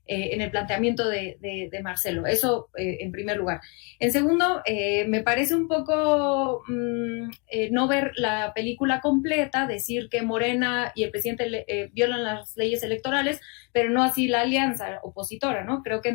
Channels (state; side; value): quieter; right; 34.3 dB